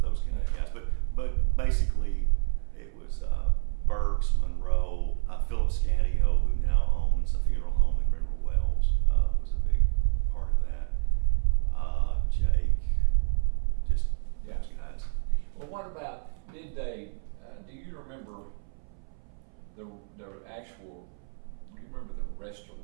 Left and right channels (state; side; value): silent; left; 59 dB below the other